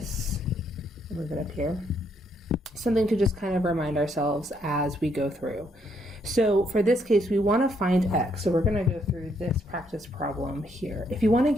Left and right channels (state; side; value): normal; both; correlation 0.73